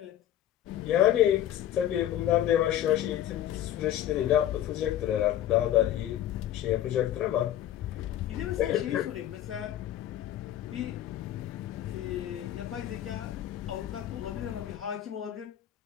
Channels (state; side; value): quieter; right; 11.9 dB